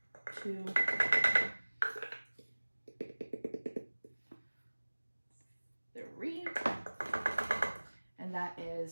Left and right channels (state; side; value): inverted; both; correlation -1.00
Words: 2, 3, and that